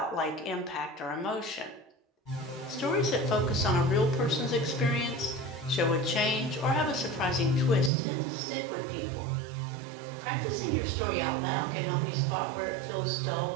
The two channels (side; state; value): left; drops out; at 7.9 s